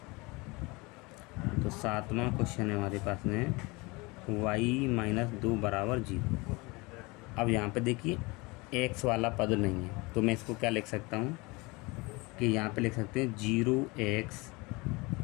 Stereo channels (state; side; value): quieter; right; 25.3 dB